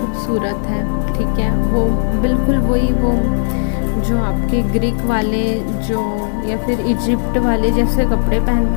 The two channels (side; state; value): right; silent; digital silence